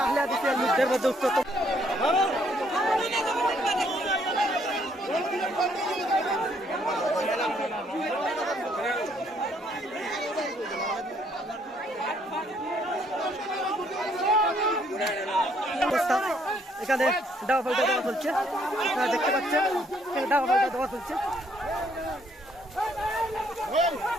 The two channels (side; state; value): both; normal; correlation 0.67